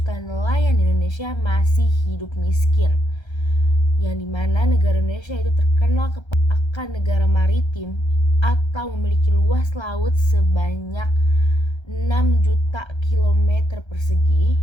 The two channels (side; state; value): right; late; 1.3 ms